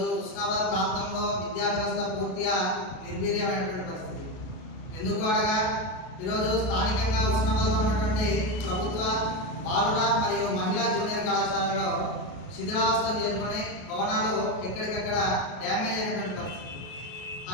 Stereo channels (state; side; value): late; right; 33 ms